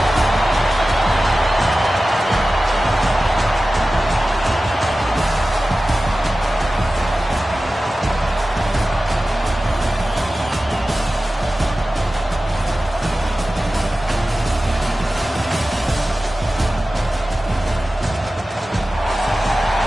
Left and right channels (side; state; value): both; normal; correlation 0.95